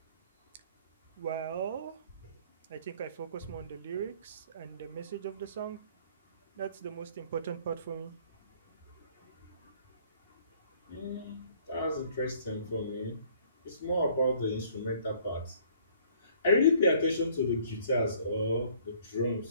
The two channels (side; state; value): both; inverted; correlation -0.57